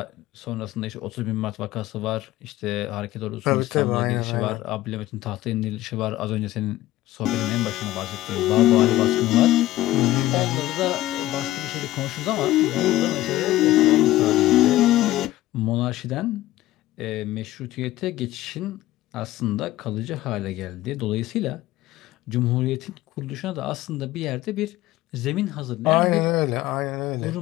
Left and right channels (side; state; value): right; quieter; 15.9 dB